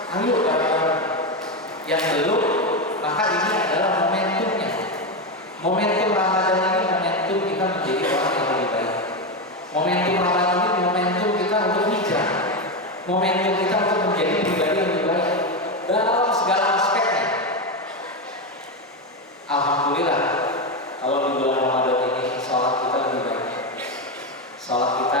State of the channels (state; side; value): normal; both; correlation 0.11